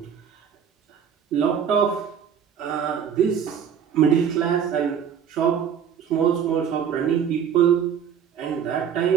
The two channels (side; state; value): left; quieter; 8.0 dB